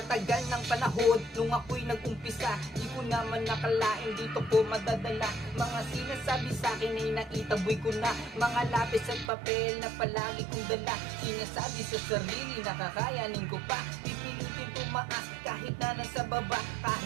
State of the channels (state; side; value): drops out; left; at 9.3 s